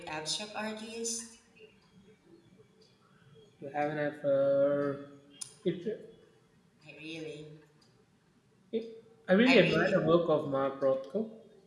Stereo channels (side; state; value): both; identical; correlation 1.00